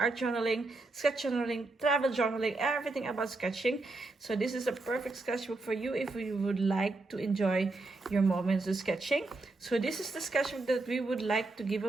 journaling, sketch journaling, travel journaling, everything about sketching. So this is a perfect sketchbook for you if you would like to enjoy your moments of sketching. So this is the sketchbook that we would like to give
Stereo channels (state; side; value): quieter; left; 3.2 dB